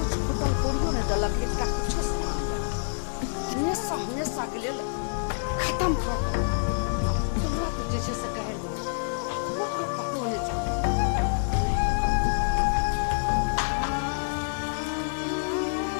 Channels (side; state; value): right; silent; digital silence